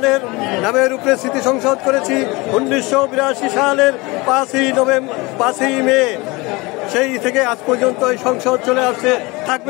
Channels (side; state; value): right; quieter; 24.2 dB